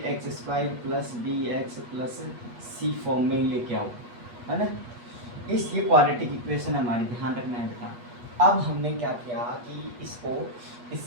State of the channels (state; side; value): late; left; 8.4 ms